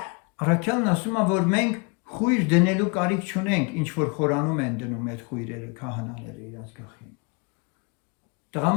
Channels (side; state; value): right; quieter; 32.3 dB